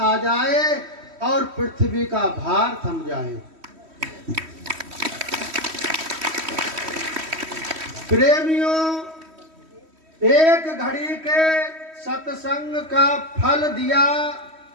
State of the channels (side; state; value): left; late; 3.1 ms